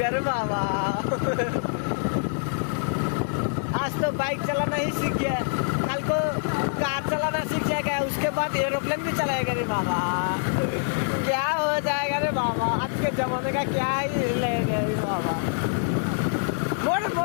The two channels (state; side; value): silent; right; 59 dB below the other